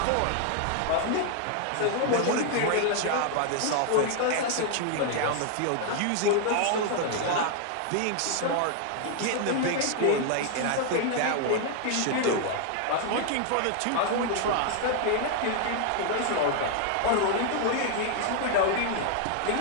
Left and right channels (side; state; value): both; different; correlation 0.00